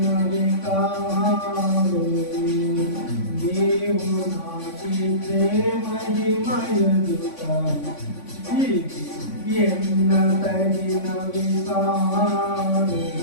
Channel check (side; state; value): right; late; 3.5 ms